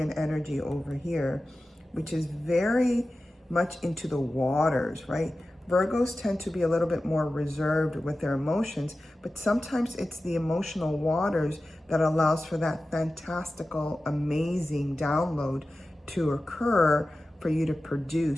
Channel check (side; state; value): both; normal; correlation 0.95